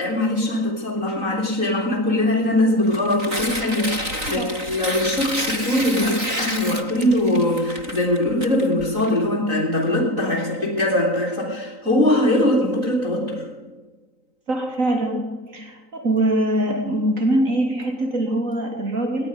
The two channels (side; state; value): left; late; 3.9 ms